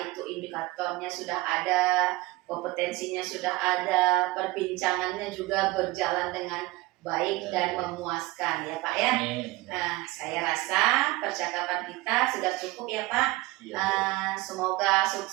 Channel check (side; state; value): left; quieter; 20.7 dB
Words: itu indikatornya sudah ada, kompetensinya sudah ada, perbincangannya juga berjalan dengan baik dan memuaskan ya Pak ya. Nah, saya rasa percakapan kita sudah cukup ya Pak. Semoga